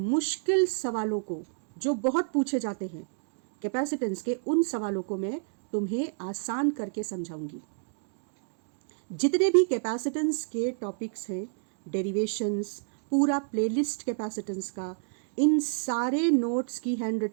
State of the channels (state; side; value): silent; left; digital silence